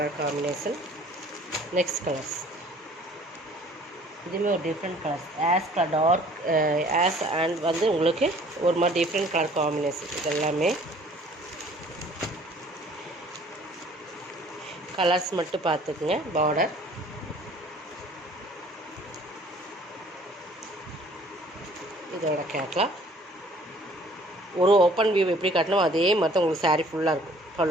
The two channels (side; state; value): both; normal; correlation 0.54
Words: காம்பினேஷன். நெக்ஸ்ட் கலர்ஸ் இதுவுமே ஒரு டிஃப்ரெண்ட் கலர்ஸ். டார்க் அண்ட் வந்து உங்களுக்கு ஒரு மாதிரி டிஃப்ரெண்ட் கலர் காம்பினேஷன். இது எல்லாமே கலர்ஸ் மட்டும் பார்த்துக்குங்க. பார்டர் இதோட கேட்லாக். ஒரு ஓப்பன் வியூ எப்படி காட்டணும் அதே மாதிரி தான் உங்களுக்கு சாரீ ஃபுல்லாக இருக்கும்.